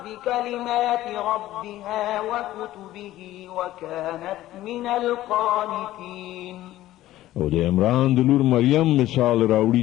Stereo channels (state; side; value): quieter; right; 14.9 dB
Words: بكلمات ربها وكتبه وكانت من القانتين. او د عمران د لور مریم مثال